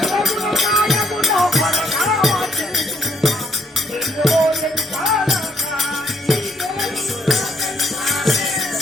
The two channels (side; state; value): both; normal; correlation 0.70